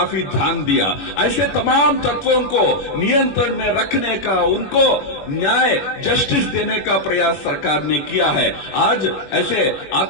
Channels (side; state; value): right; late; 21 ms